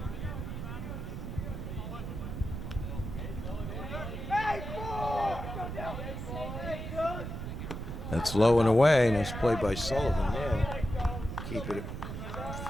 That's low and away. Nice play by Sullivan there. Keep it in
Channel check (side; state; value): right; noise; rumble, 6 dB below the sound